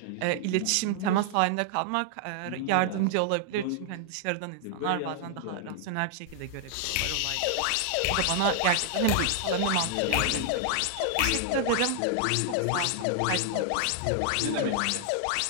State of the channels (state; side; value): different; both; correlation 0.00